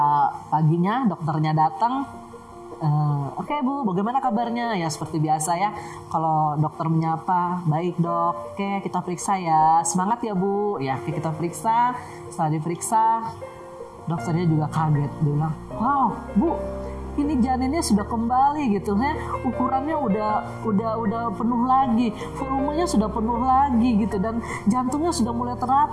paginya dokternya datang, Oke Bu, bagaimana kabarnya? Ya seperti biasa ya, kalau dokter menyapa, baik dok, oke kita periksa ya, semangat ya Bu. Ya kita periksa, setelah diperiksa dokternya juga kaget, dia bilang, wow Bu, ini janinnya sudah kembali gitu ya, ukurannya udah penuh lagi, volumenya sudah penuh lagi gitu, dan jantungnya sudah mulai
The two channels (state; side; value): identical; both; correlation 1.00